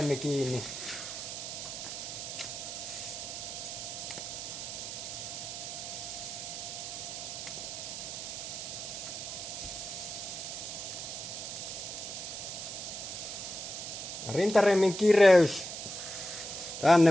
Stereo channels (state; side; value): noise; right; hiss, 7 dB below the sound